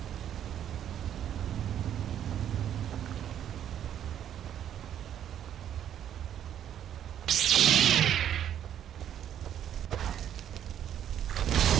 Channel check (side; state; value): left; quieter; 10.2 dB